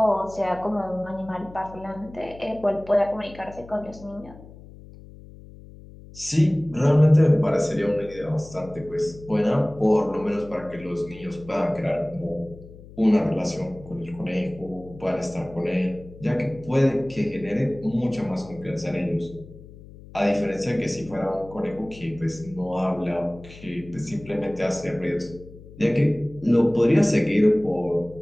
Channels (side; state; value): left; noise; hum, 19 dB below the sound